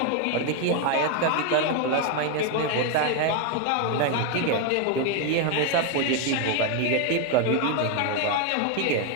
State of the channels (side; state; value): both; different; correlation 0.01